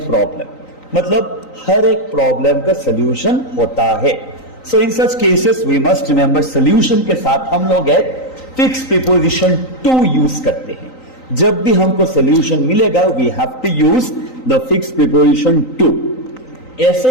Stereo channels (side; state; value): right; late; 3.9 ms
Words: मतलब हर एक प्रॉब्लम का सोल्यूशन होता है। So in such cases we must remember solution के साथ हम लोग फिक्स प्रीपोजिशन टू यूज करते हैं। जब भी हमको सोल्यूशन मिलेगा we have to use the fix preposition to. ऐसे